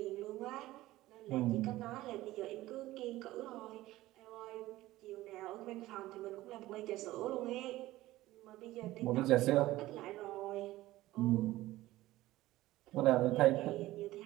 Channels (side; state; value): left; quieter; 16.7 dB